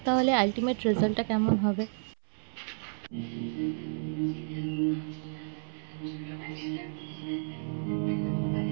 তাহলে আলটিমেট রেজাল্টটা কেমন হবে।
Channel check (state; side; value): silent; left; 57 dB below the other